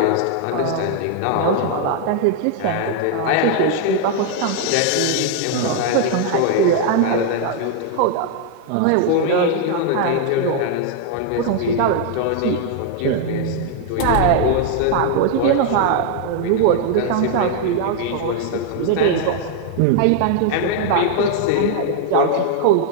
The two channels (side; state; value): both; different; correlation 0.00